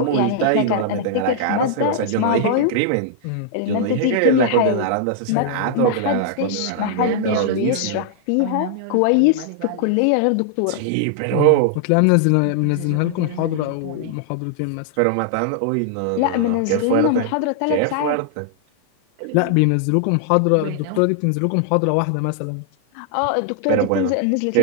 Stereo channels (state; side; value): different; both; correlation -0.01